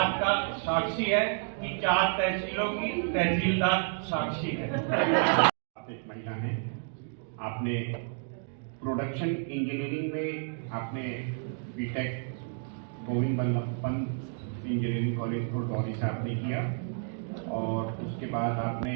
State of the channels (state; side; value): silent; left; 57 dB below the other